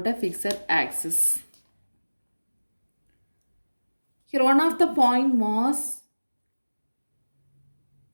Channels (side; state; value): both; inverted; correlation -1.00